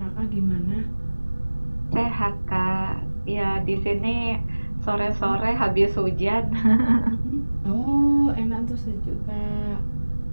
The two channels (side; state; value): both; inverted; correlation -1.00